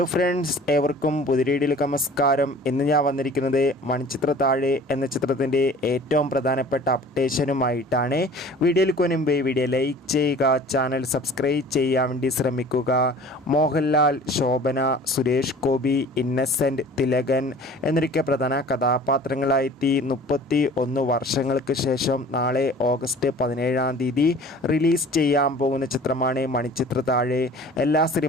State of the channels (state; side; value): normal; both; correlation 0.46